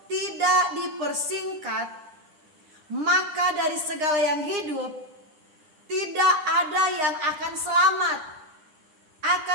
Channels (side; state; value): left; late; 9.9 ms